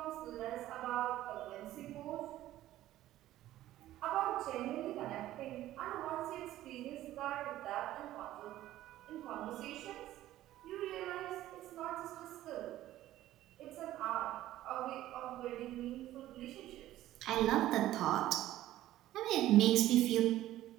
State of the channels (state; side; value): quieter; left; 14.3 dB